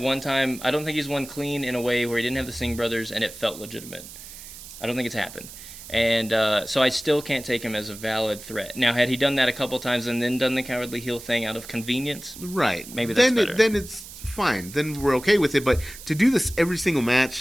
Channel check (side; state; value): right; noise; hiss, 15 dB below the sound